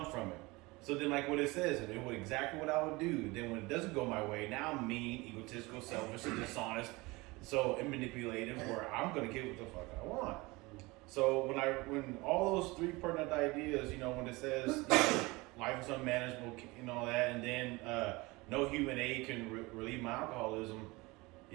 from it. So then, like what it says, and it would exactly what I would do. Then when it doesn't go my way, now I'm mean, egotistical, selfish, and dishonest, and manipulative, where I'm gonna get what the fuck I want. So when all those three pertinent ideas, you know, when it says you know, life is unmanageable and all that, and then no human aid can relieve my alcoholism,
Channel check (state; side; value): quieter; left; 23.2 dB